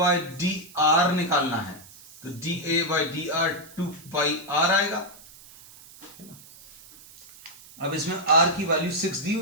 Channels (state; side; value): noise; right; hiss, 21 dB below the sound